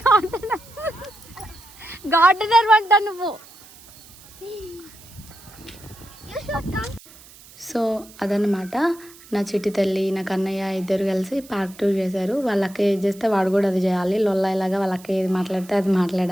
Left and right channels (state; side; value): noise; right; hiss, 22 dB below the sound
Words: garden. Gardener అంట నువ్వు. You should come. So అదనమాట నా చిట్టి తల్లి నా కన్నయ్య ఇద్దరు కలిసి పార్క్ టూర్ చేశారు. వాళ్ళకి ఏది చేస్తే వాడు కూడా అది చేయాలి. లొల్లాయిలాగా వాళ్ళకి ఏది మాట్లాడితే అది